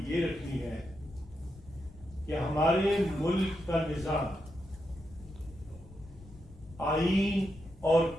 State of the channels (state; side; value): noise; left; rumble, 20 dB below the sound